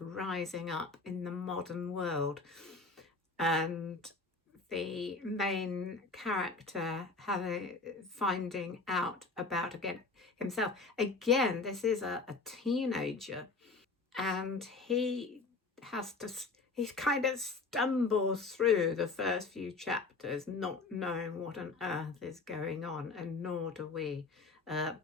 up in the modern world. And the main character finding out about himself. Again, this is a teenager, and he kind of stumbles through the first few chapters not knowing what on earth is going on, and nor do we.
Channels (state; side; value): quieter; right; 3.9 dB